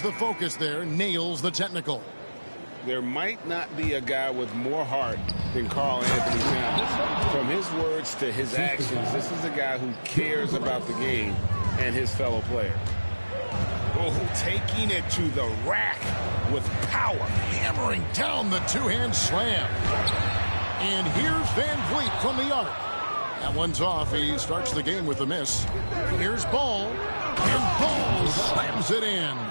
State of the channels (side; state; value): both; inverted; correlation -1.00